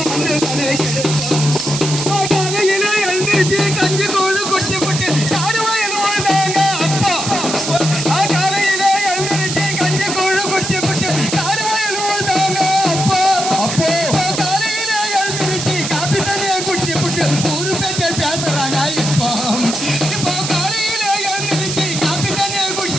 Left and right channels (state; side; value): noise; right; hiss, 4 dB below the sound